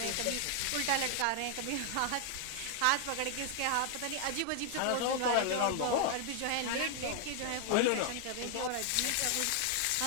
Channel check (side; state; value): both; different; correlation 0.00